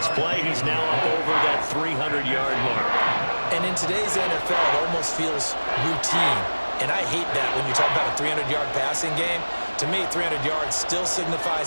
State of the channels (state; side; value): inverted; both; correlation -1.00